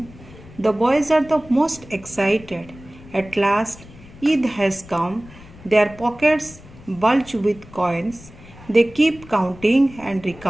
The boys are the most excited. At last, Eid has come. Their pockets bulge with coins. They keep counting and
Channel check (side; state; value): left; noise; rumble, 20 dB below the sound